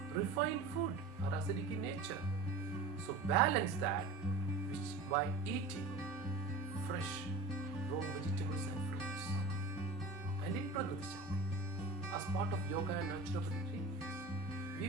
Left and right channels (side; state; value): left; quieter; 3.5 dB